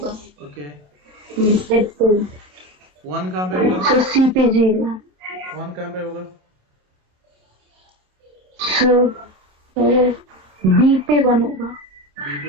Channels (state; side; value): late; left; 27 ms